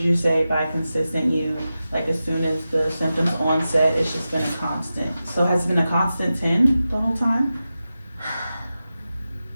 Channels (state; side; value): inverted; both; correlation -0.93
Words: you say by consistent you, like as soon as the symptoms onset, it's just been a constant? So has it been a constant 10 the whole time?